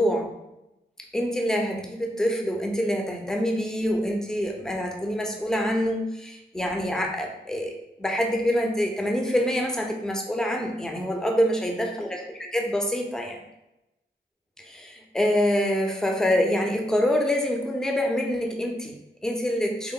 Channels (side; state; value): both; normal; correlation 0.81